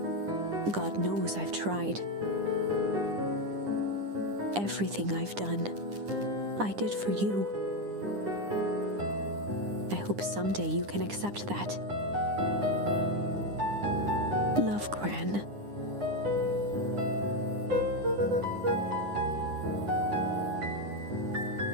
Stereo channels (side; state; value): left; late; 9.9 ms